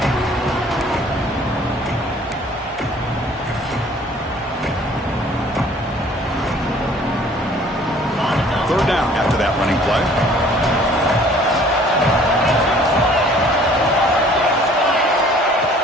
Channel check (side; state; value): both; normal; correlation 0.54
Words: Third down after that running play.